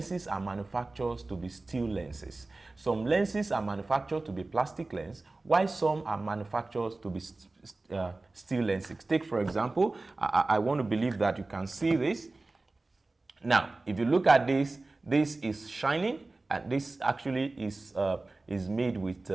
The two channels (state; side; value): quieter; left; 3.2 dB